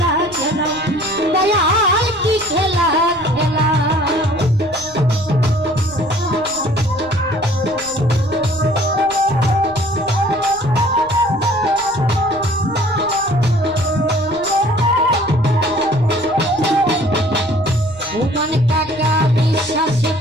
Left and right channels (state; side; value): noise; left; rumble, 22 dB below the sound